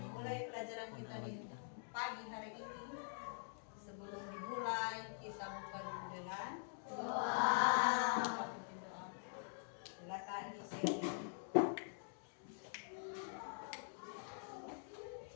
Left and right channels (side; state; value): right; silent; digital silence